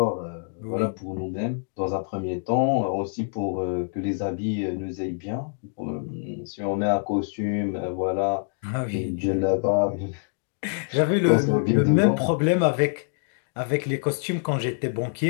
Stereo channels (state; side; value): silent; right; digital silence